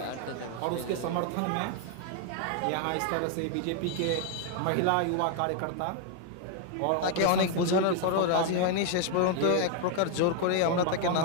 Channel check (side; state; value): both; different; correlation 0.00